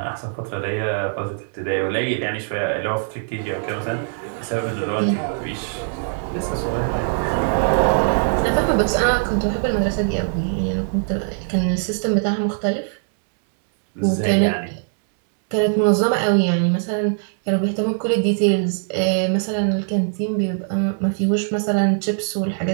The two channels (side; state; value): left; silent; digital silence